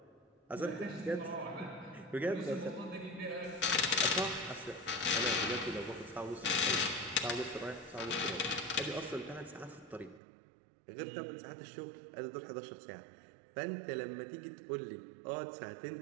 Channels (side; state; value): left; drops out; at 10.2 s